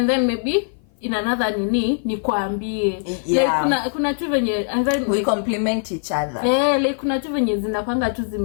then maybe in another nikwambie. Like kuna tu venye and then we complement each other. Like kuna tu venye zinapanga tu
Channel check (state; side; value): silent; right; 56 dB below the other